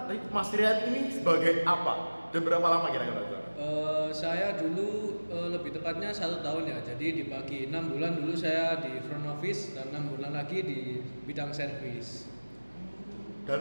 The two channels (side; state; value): both; inverted; correlation -1.00